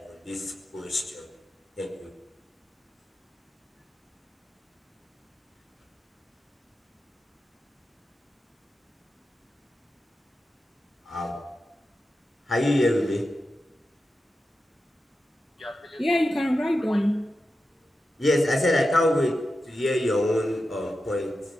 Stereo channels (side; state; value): both; normal; correlation 0.91